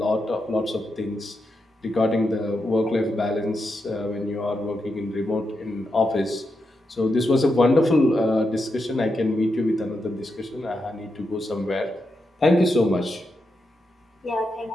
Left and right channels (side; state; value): both; normal; correlation 0.85